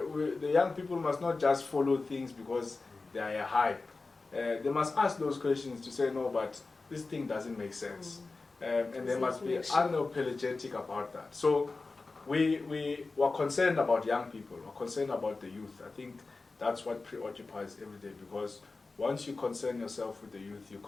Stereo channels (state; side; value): quieter; right; 3.8 dB